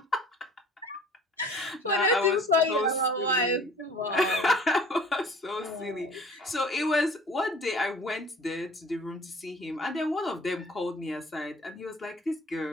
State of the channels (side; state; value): both; normal; correlation 0.48